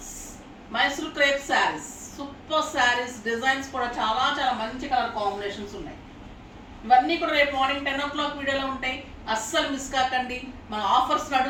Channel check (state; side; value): identical; both; correlation 1.00